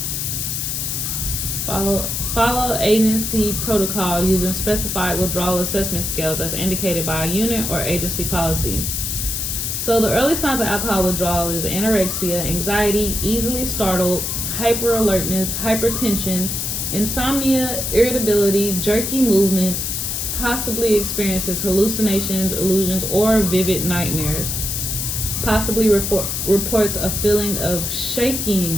follow agency protocol using specified withdrawal assessment scales as indicated by a unit or agency policy. So the early signs of alcohol withdrawal is anorexia, anxiety, easily startled, hyperalertness, hypertension, insomnia, irritability, jerky movements, possibly experiences hallucinations, illusions, or vivid nightmares. Possibly reports a feeling of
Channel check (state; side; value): noise; left; hiss, 2 dB below the sound